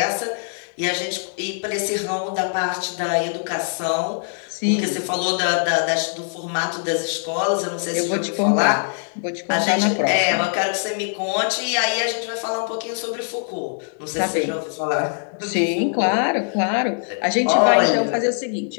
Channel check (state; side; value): silent; right; digital silence